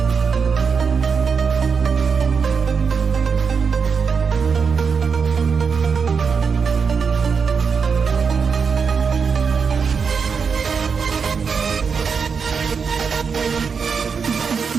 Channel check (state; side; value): quieter; left; 5.8 dB